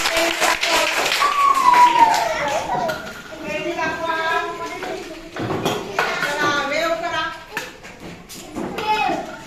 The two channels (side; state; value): both; identical; correlation 1.00